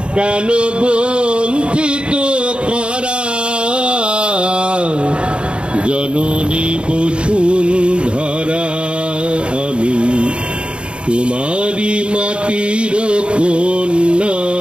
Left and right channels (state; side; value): late; left; 0.055 ms